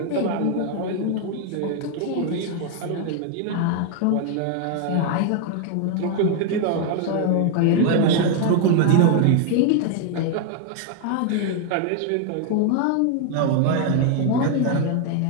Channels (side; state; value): both; different; correlation 0.00